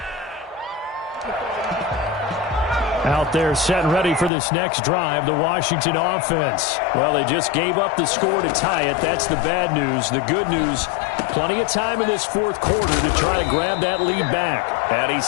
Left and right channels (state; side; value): drops out; right; at 4.3 s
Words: Out there set and ready for this next drive, the Washington offense. Well, they just gave up the score to tie it. That's the bad news. The good news, plenty of time in this fourth quarter to try to grab that lead back. And